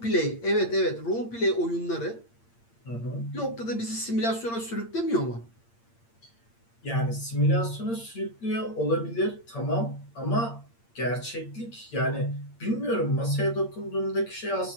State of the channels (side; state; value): right; late; 8.7 ms